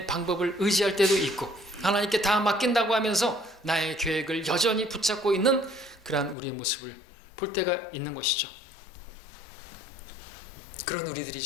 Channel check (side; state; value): right; drops out; at 6.4 s